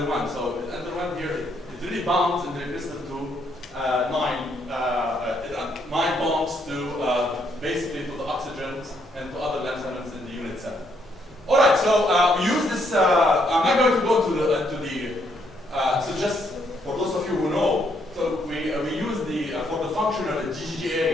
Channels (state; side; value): normal; both; correlation 0.72